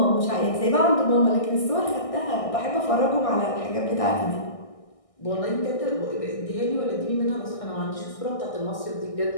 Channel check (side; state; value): right; late; 1.6 ms